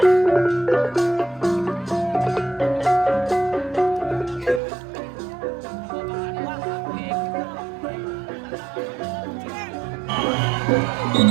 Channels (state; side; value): drops out; left; at 4.6 s